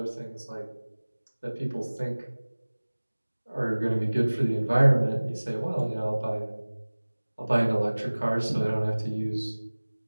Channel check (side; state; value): both; inverted; correlation -1.00